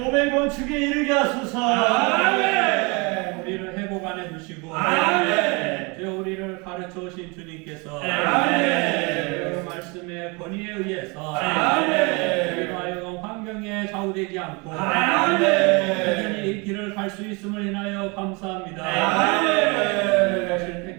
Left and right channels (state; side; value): quieter; left; 29.0 dB